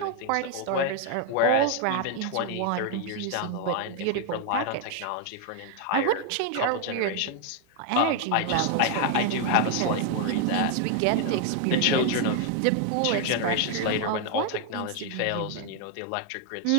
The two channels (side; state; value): both; different; correlation 0.01